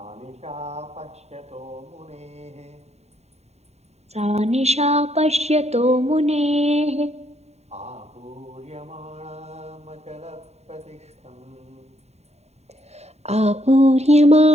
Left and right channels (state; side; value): late; left; 0.31 ms